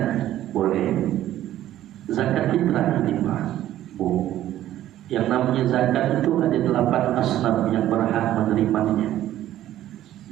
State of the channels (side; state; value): left; quieter; 13.0 dB